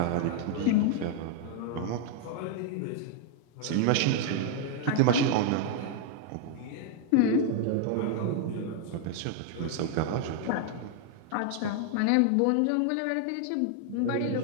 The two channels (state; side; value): different; both; correlation 0.00